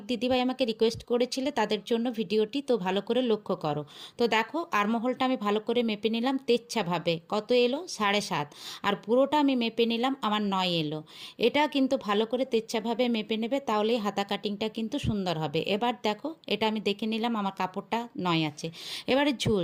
দিদিভাই আমাকে রিকোয়েস্ট করেছিলে তাদের জন্য ভিডিওটি। তো ভালো করে লক্ষ্য করো। তো দেখো আর্মহোলটা আমি ভালো করে মেপে নিলাম তেচ্ছাভাবে, কত এলো 7.5, আর পুরোটা আমি মেপে নিলাম আমার 9 এলো। এটা কিন্তু ভালো করে তেচ্ছাভাবে মেপে নেবে, তাহলেই হাতা কাটিংটা কিন্তু সুন্দর হবে। এবার দেখো এটা আমি দেখে নিলাম আমার কাপড়টা 9 আছে। এবারে ঝুল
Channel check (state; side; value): identical; both; correlation 1.00